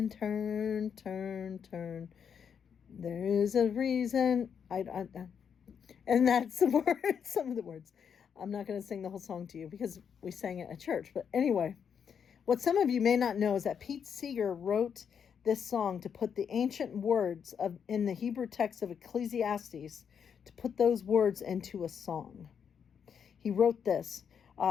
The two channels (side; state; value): right; quieter; 7.4 dB